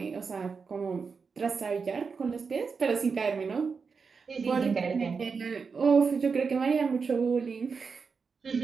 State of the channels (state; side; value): quieter; left; 5.3 dB